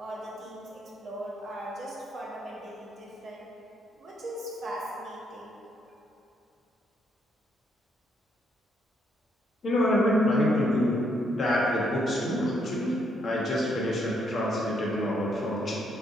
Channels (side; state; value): both; normal; correlation 0.74